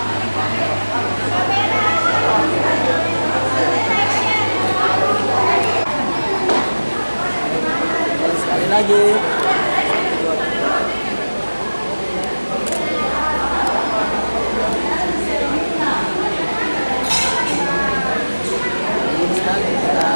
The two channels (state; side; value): inverted; both; correlation -1.00